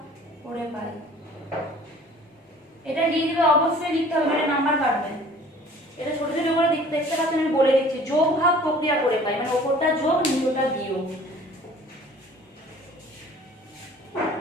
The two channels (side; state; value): both; normal; correlation 0.50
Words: করে পাই। এটা লিখবে অবশ্যই লিখতে হবে, এটা নাম্বার কাটবে। এটা ছোট ছোট করে দেখতে পাচ্ছেন আমি বলে দিচ্ছি, যোগ ভাগ প্রক্রিয়া করে পাই মানে ওপরটা যোগ নিচেটা বিয়োগ।